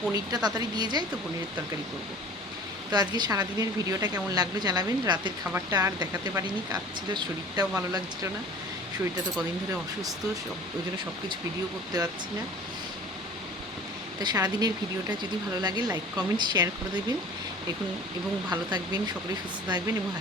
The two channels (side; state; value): both; normal; correlation 0.44